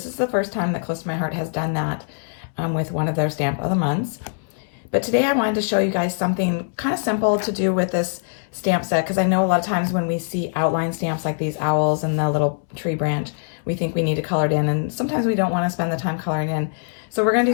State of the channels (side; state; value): right; silent; digital silence